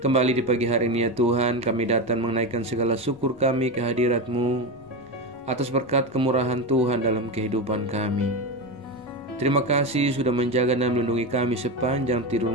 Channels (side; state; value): both; normal; correlation 0.17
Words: Kembali di pagi hari ini ya Tuhan, kami datang menaikkan segala syukur kami ke hadirat-Mu atas berkat kemurahan Tuhan dalam kehidupan kami. Terima kasih sudah menjaga dan melindungi kami sepanjang tidur